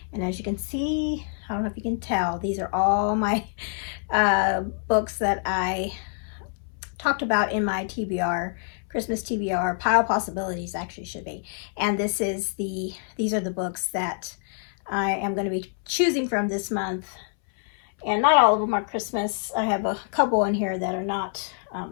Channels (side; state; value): right; silent; 61 dB below the other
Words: And as you can see, I don't know if you can tell, these are all my books that I talked about in my TBR, Christmas TBR, Pile of Possibilities actually should be. And these are the books that I am going to be choosing from this month. And not all of them are Christmas. I have a couple in here that are not